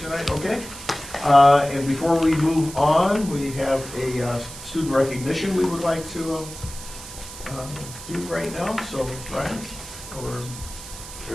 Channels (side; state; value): right; noise; hiss, 13 dB below the sound